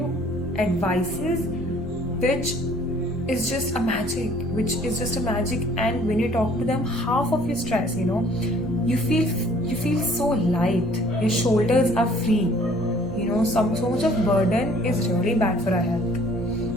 advices which is just a magic, and when you talk to them, half of your stress, you feel so light, your shoulders are free. So much of burden is really bad for our health.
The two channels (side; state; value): both; normal; correlation 0.56